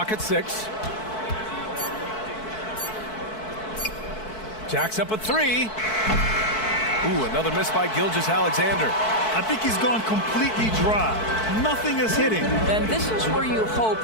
at 6. Jacks up a 3. Ooh, another miss by Gilgeous-Alexander. I think he's gone completely dry. Nothing is hitting. And this is where you hope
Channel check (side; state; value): right; late; 4.6 ms